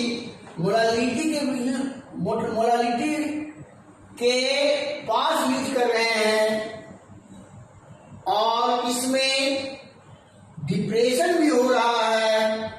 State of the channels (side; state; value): both; identical; correlation 1.00